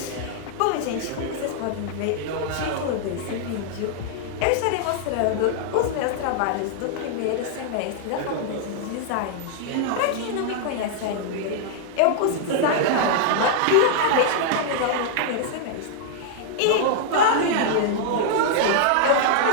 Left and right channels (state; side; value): different; both; correlation -0.01